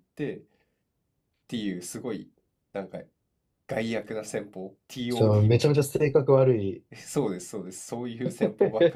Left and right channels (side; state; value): both; identical; correlation 1.00